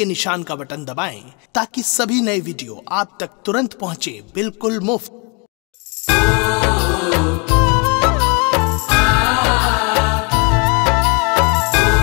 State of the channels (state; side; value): quieter; right; 33.0 dB